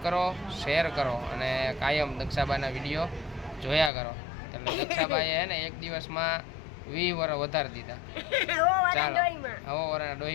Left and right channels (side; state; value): right; drops out; at 3.9 s